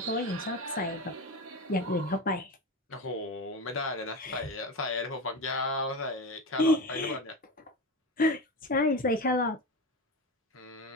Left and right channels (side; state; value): both; normal; correlation 0.22